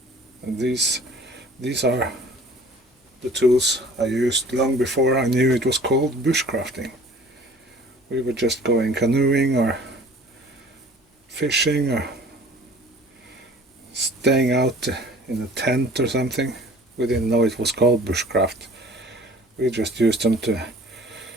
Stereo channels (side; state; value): both; normal; correlation 0.49